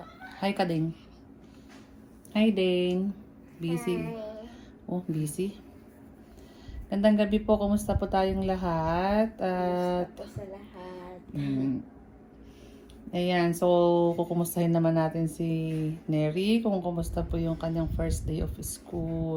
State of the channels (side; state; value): both; identical; correlation 1.00